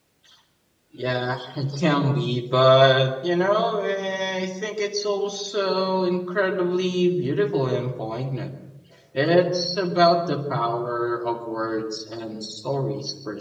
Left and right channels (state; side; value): identical; both; correlation 1.00